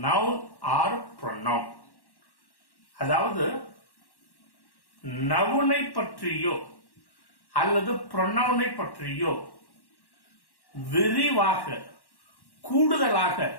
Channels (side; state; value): right; late; 1.1 ms